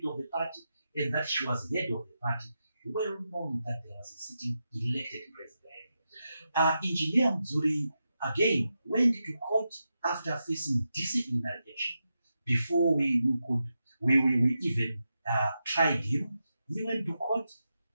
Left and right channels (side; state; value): both; inverted; correlation -0.88